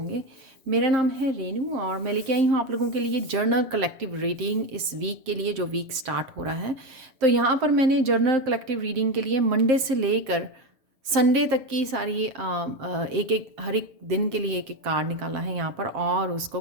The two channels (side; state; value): left; late; 7.6 ms